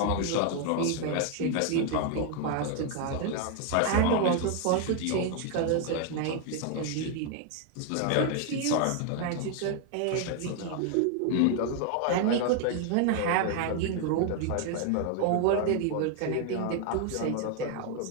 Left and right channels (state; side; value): different; both; correlation 0.00